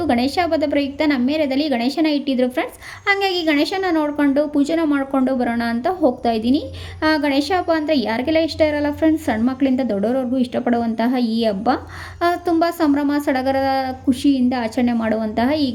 ಗಣೇಶ ಹಬ್ಬದ ಪ್ರಯುಕ್ತ ನಮ್ಮ ಏರಿಯಾದಲ್ಲಿ ಗಣೇಶನ ಇಟ್ಟಿದ್ರು ಫ್ರೆಂಡ್ಸ್. ಹಾಗಾಗಿ ಗಣೇಶನ ನೋಡಿಕೊಂಡು ಪೂಜೆನ ಮಾಡಿಕೊಂಡು ಬರೋಣ ಅಂತ ಹೋಗ್ತಾ ಇದ್ದೀನಿ. ಗಣೇಶ ಹಬ್ಬ ಅಂದರೆ ಯಾರಿಗೆಲ್ಲ ಇಷ್ಟ ಇರಲ್ಲ ಫ್ರೆಂಡ್ಸ್. ಸಣ್ಣ ಮಕ್ಕಳಿಂದ ದೊಡ್ಡವರವರೆಗೂ ಇಷ್ಟಪಡುವಂತಹ ಈ ಹಬ್ಬ ತುಂಬ ಸಂಭ್ರಮ ಸಡಗರದ ಖುಷಿಯಿಂದ ಆಚರಣೆ ಮಾಡುವಂತಹ ಈ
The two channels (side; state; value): both; identical; correlation 1.00